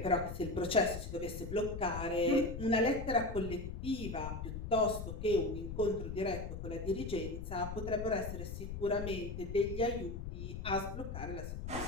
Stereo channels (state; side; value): noise; left; rumble, 7 dB below the sound